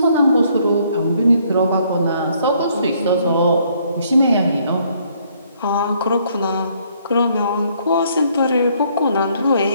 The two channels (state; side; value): inverted; both; correlation -0.67